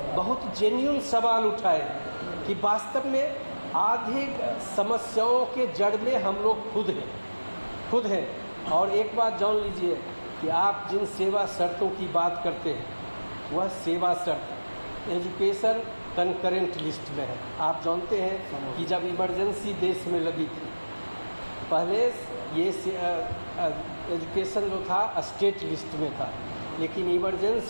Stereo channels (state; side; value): inverted; both; correlation -1.00